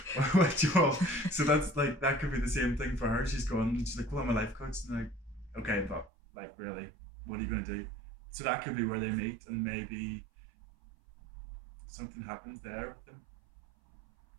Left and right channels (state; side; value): drops out; left; at 6.1 s